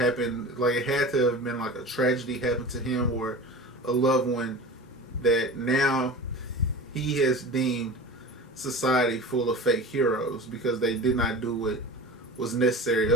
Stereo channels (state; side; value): normal; both; correlation 0.33